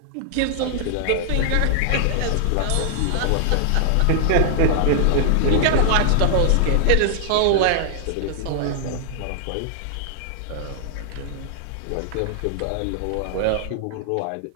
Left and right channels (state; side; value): different; both; correlation -0.01